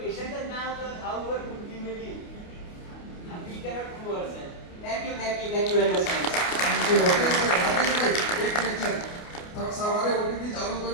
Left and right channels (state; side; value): late; right; 29 ms